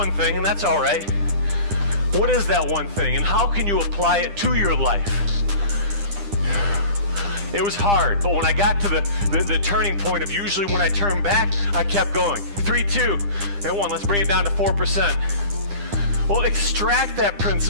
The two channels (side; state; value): left; late; 9.9 ms